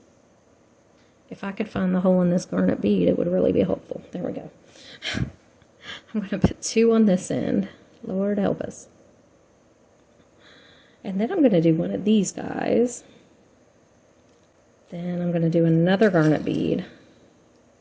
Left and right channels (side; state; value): both; identical; correlation 1.00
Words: If I could find the hole in this garnet bead, it would really be helpful. There we go. I'm going to put 2 on this end. Lord help us. And then I'm going to do one of these guys. Then I'm going to do another garnet bead.